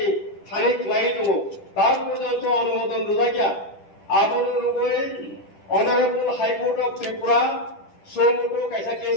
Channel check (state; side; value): late; right; 10 ms